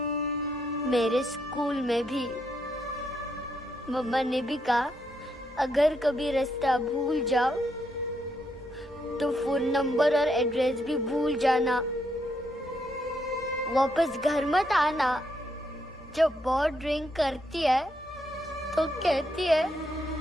मेरे स्कूल में भी मम्मा ने भी कहा, अगर कभी रास्ता भूल जाओ तो फोन नंबर और एड्रेस भी भूल जाना। वापस घर मत आना। जब बहुत ड्रिंक करती है तो कहती है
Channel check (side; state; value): both; normal; correlation 0.78